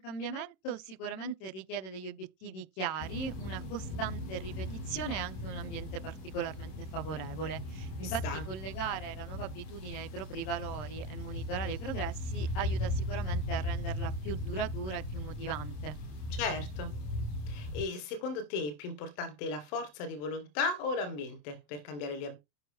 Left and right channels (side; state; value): right; late; 27 ms